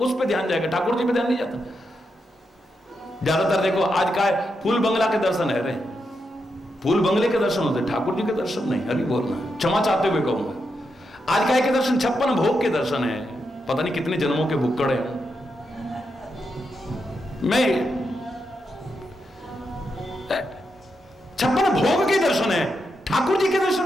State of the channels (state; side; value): normal; both; correlation 0.84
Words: उस पे ध्यान जाएगा, ठाकुर जी पे ध्यान नहीं जाता। ज्यादातर देखो आज का फूल बंगला के दर्शन है, फूल बंगले के दर्शन होते, ठाकुर जी के दर्शन नहीं। हरि बोलना, क्षमा चाहते हुए कहूंगा। आज का के दर्शन 56 भोग के दर्शन है, पता नहीं कितने जन्मों के भुक्कड़ है। मैं 56 भोग के दर्शन है, ठाकुर जी के